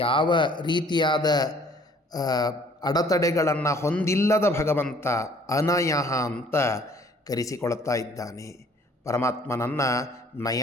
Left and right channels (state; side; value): normal; both; correlation 0.57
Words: ರೀತಿಯಾದ ಅಡೆತಡೆಗಳನ್ನು ಹೊಂದಿಲ್ಲದ ಭಗವಂತ ಅನಯಃ ಅಂತ ಕರೆಸಿಕೊಳ್ತಾ ಇದ್ದಾನೆ. ಪರಮಾತ್ಮನನ್ನು